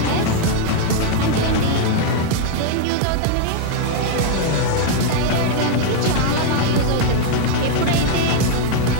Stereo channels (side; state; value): both; different; correlation 0.00